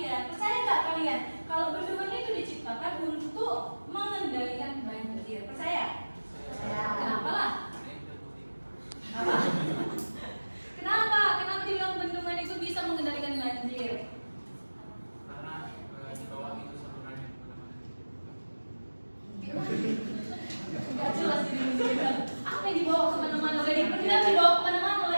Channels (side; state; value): both; inverted; correlation -1.00